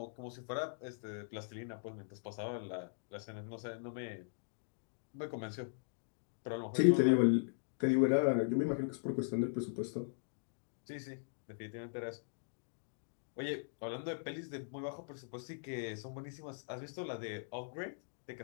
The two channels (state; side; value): silent; right; digital silence